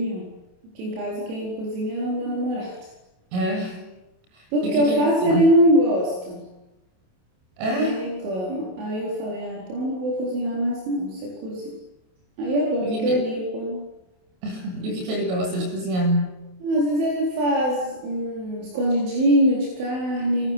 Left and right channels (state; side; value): late; left; 27 ms